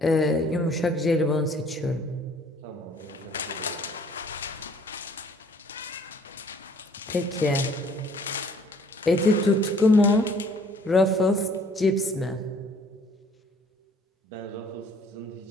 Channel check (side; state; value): both; normal; correlation 0.58